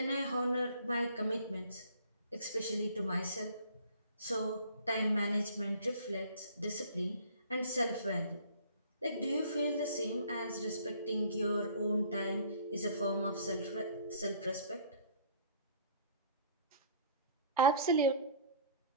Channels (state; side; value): inverted; both; correlation -0.52